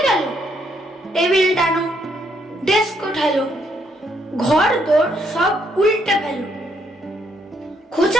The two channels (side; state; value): both; normal; correlation 0.73